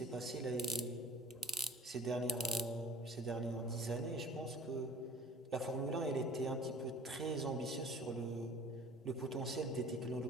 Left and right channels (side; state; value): both; normal; correlation 0.47